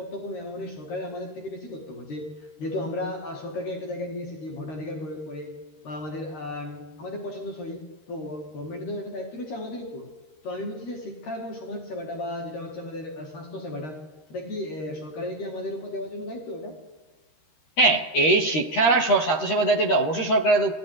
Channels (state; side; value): late; right; 13 ms